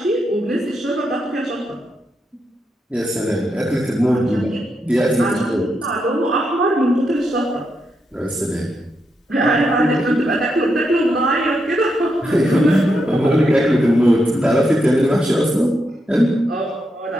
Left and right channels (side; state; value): both; normal; correlation 0.83